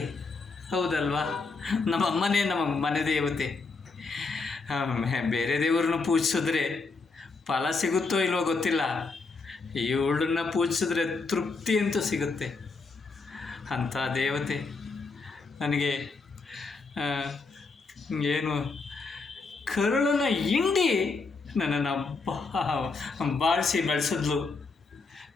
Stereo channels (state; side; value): quieter; right; 4.1 dB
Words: ಹೌದಲ್ವಾ? ನಮ್ಮಮ್ಮನೇ ನಮ್ಮ ಮನೆ ದೇವತೆ. ಬೇರೆ ದೇವ್ರನ್ನ ಪೂಜಿಸಿದ್ರೆ ಫಲ ಸಿಗುತ್ತೋ ಇಲ್ವೋ ಗೊತ್ತಿಲ್ಲ, ಇವಳನ್ನ ಪೂಜಿಸಿದ್ರೆ ತೃಪ್ತಿ ಅಂತೂ ಸಿಗುತ್ತೆ. ಅಂಥ ದೇವತೆ ನನಗೆ ಏನು ಕರುಳನ್ನು ಹಿಂಡಿ ನನ್ನನ್ನು ಬಾಳಿಸಿ ಬೆಳೆಸಿದ್ಲು.